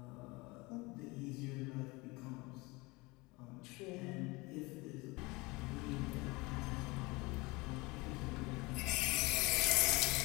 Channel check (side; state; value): right; quieter; 24.2 dB